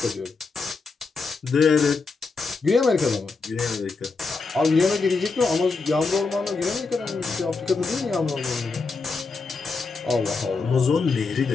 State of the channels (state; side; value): quieter; right; 4.3 dB